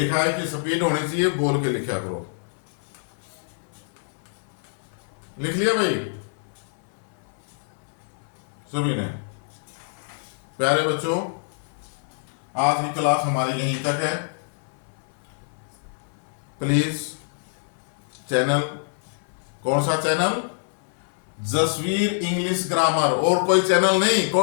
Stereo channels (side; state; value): right; silent; 58 dB below the other